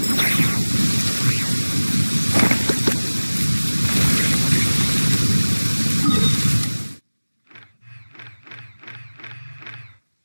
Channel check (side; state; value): both; inverted; correlation -1.00